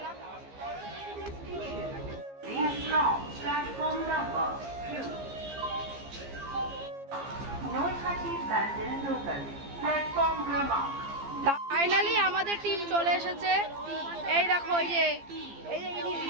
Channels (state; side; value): late; left; 15 ms